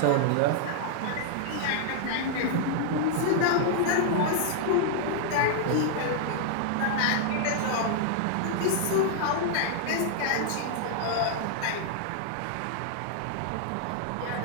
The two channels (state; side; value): different; both; correlation -0.01